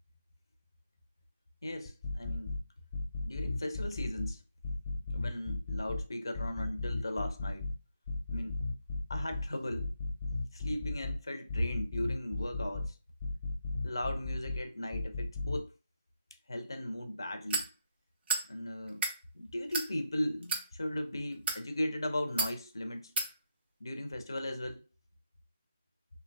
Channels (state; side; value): inverted; both; correlation -0.81